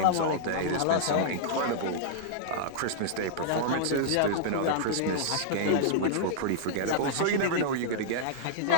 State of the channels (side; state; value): both; different; correlation -0.02